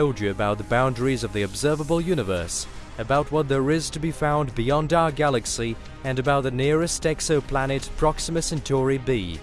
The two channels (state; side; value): identical; both; correlation 1.00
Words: you about the boundaries of the observable universe, about what there is to be found beyond our galaxy, and about the nearest exoplanet Proxima Centauri b.